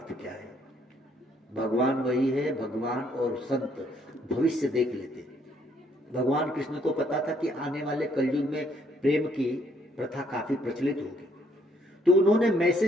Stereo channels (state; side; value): normal; both; correlation 0.68